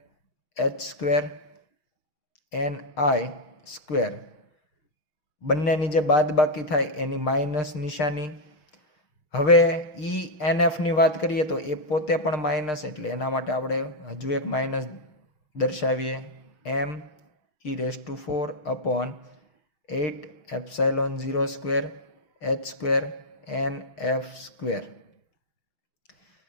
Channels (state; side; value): late; right; 6.6 ms